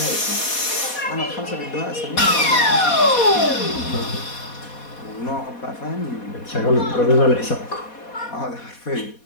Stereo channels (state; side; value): late; right; 4.2 ms